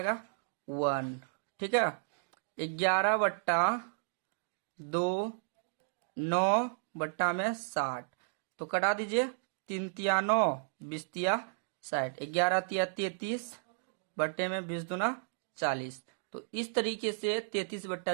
1। ठीक है, 11/2 9 बट्टा में 60, तो कटा दीजिए, 3 तिया 9, 20 तिया 60, 11 तिया 33 बट्टे में 20 दूना 40। तो इस तरीके से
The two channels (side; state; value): left; silent; digital silence